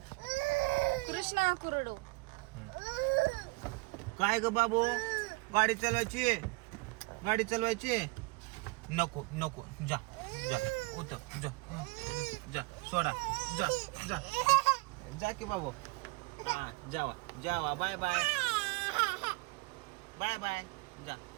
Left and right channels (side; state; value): left; quieter; 26.4 dB